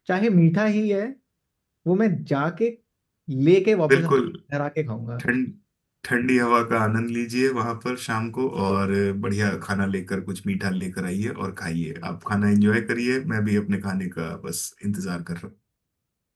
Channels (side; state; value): both; identical; correlation 1.00